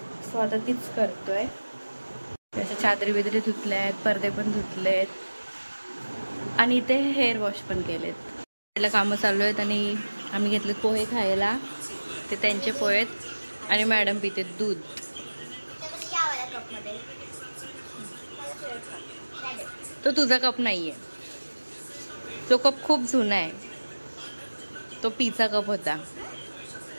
सो आता तीच करतोय. त्याच्या चादरी बिदरी धुतल्या आहेत, पडदे पण धुतले आहेत आणि इथे हेअर वॉश पण केलेत. त्याला कामं चालू आहेत आणि आम्ही घेतलेत पोहे खायला. ते त्यांचे पोहे आहेत आणि मॅडम पिते दूध. तो तुझा कप नाहीये, तो कप खूप जुना आहे. तो पीचा कप होता.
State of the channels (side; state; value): both; inverted; correlation -1.00